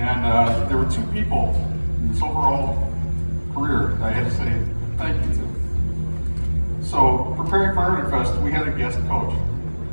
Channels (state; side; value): inverted; both; correlation -1.00